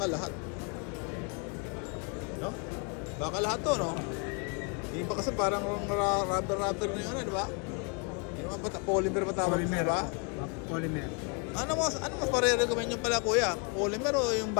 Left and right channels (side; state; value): right; quieter; 34.5 dB